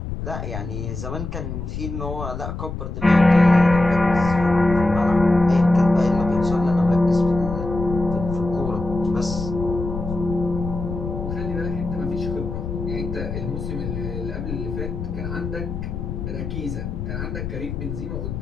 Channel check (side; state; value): left; noise; rumble, 6 dB below the sound